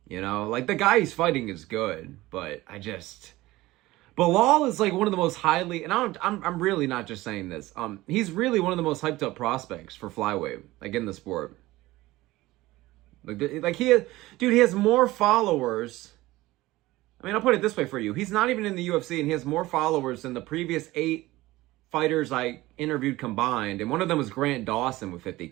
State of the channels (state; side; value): quieter; left; 18.3 dB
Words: You know, like the guy he's fighting is good, but Bilal is like one of the most highly, and I'm really not just saying this. He's really one of the most hyped up prospects for flyweight, like in the sport. Like he has more followers. I mean, I'll put it this way for you. He's not even in the UFC, and he has more followers than the previous 8 fighters I interviewed combined, and one of them was Grant Dawson with